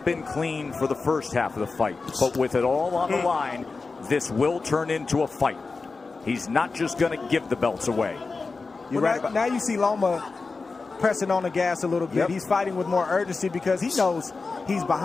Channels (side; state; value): right; quieter; 4.1 dB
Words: been clean for the first half of the fight, but with it all on the line, this will turn into a fight. He's not just going to give the belts away. Now you see Loma pressing on the gas a little bit. He's fighting with more urgency because he knows he's